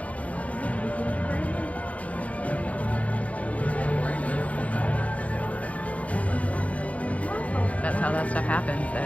That's how that stuff happens,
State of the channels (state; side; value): late; right; 0.067 ms